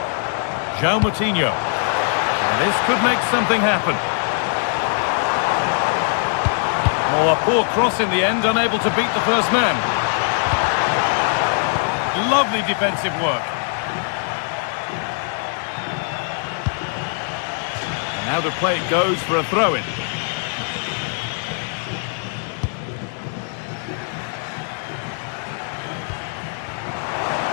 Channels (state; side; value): silent; right; 63 dB below the other